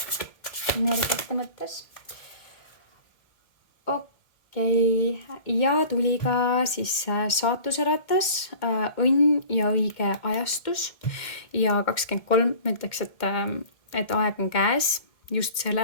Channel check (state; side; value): late; right; 1.7 ms